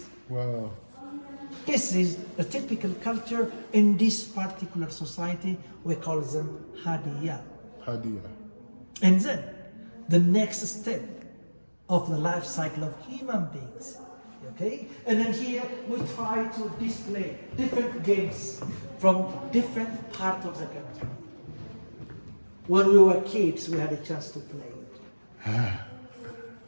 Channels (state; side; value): inverted; both; correlation -1.00